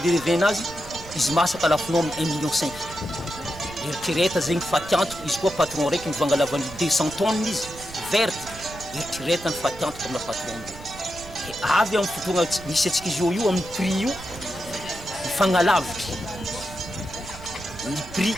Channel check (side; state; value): right; noise; rumble, 16 dB below the sound